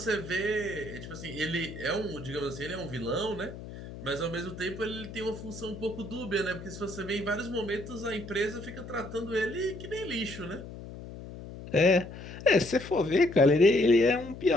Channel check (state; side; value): noise; left; hum, 12 dB below the sound